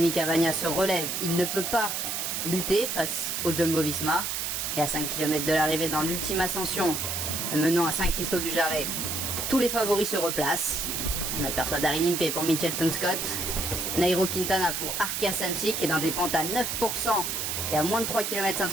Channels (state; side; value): noise; right; hiss, 2 dB below the sound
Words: Cavagna se relève, il ne peut pas lutter face au Jumbo-Visma. Et à 5 km de l'arrivée dans l'ultime ascension menant à Saint-Christophe-du-Jarret, tous les favoris se replacent. On aperçoit Daryl Impey pour Mitchelton Scott, Nairo Quintana pour Arkea Samsic qui est dans des pentes à 9% et à moins de 3 km